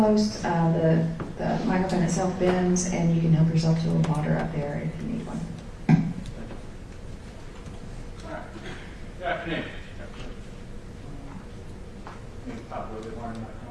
The microphone itself bends, and you can help yourself to a little water up there if you need one. Good afternoon.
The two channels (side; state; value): both; identical; correlation 1.00